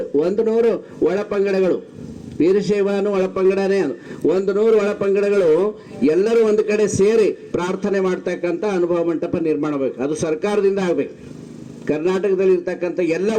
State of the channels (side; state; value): both; identical; correlation 1.00